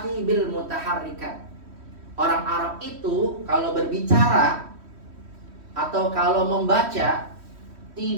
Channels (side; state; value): left; late; 3.1 ms